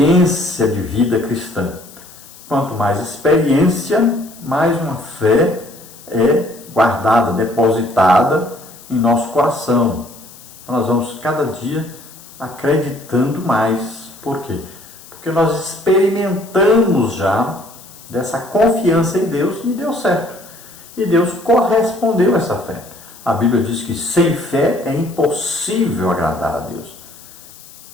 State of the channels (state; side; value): noise; left; hiss, 20 dB below the sound